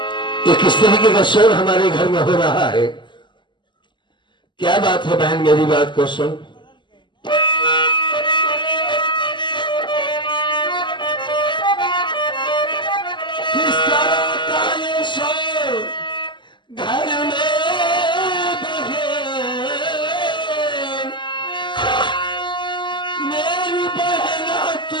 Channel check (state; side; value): late; right; 0.22 ms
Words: ये किस तरीके का शोर हमारे घर में हो रहा है? क्या बात है बहन, मेरी बात को सुन। किस तरह का ये शोर घर में बहे, मेरी बहना